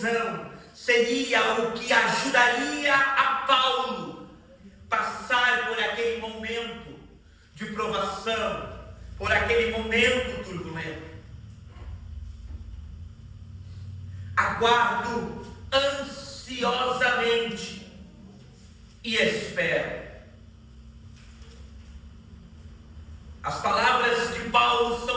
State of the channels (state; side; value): identical; both; correlation 1.00